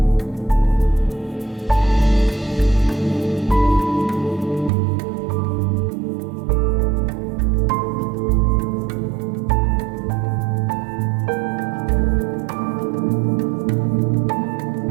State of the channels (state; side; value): drops out; left; at 4.7 s